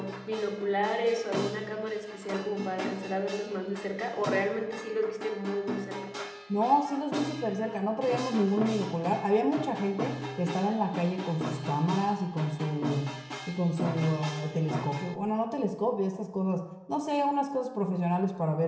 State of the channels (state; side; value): identical; both; correlation 1.00